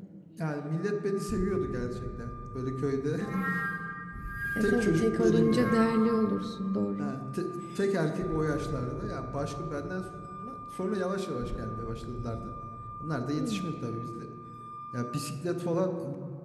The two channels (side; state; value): both; identical; correlation 1.00